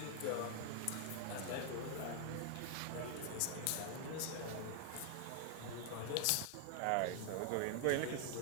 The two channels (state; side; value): different; both; correlation 0.00